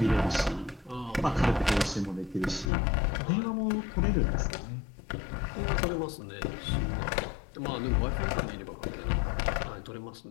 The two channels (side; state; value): right; drops out; at 2.7 s